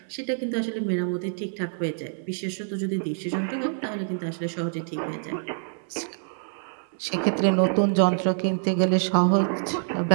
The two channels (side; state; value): left; silent; 61 dB below the other